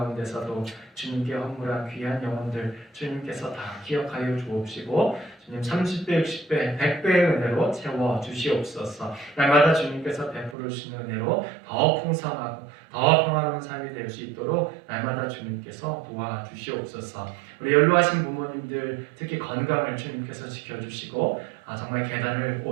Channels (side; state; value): left; drops out; at 10.6 s